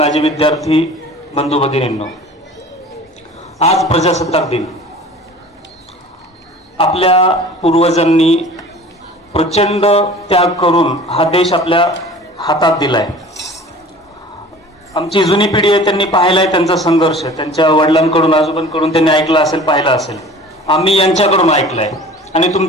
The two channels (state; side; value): normal; both; correlation 0.43